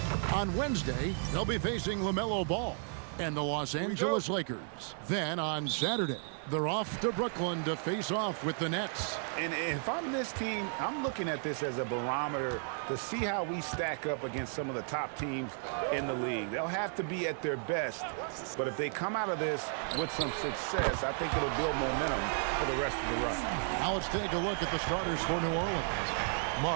On Wednesday, they'll be facing LaMelo Ball and the Los Angeles Lakers. Then on Saturday, they're off to Brooklyn to face off with the Nets. And if I'm this team, I'm looking at this as a barometer to see how we stack up against some of the top teams in the league. They'll have to be at their best, but if they come out of this with some success, I think it'll build momentum for the rest of the run. Now let's take a look at the starters for New Orleans.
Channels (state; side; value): silent; left; 55 dB below the other